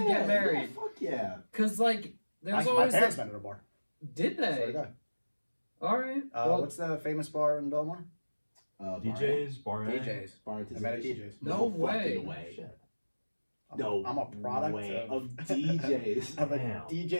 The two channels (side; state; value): both; inverted; correlation -1.00